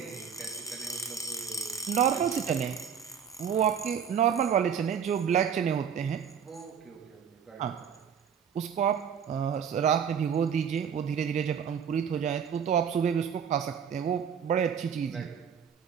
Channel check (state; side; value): quieter; left; 7.6 dB